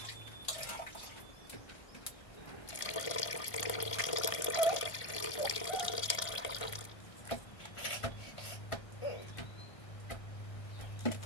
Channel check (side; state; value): right; late; 1.5 ms